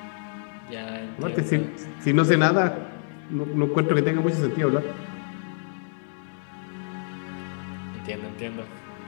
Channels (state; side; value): silent; right; 60 dB below the other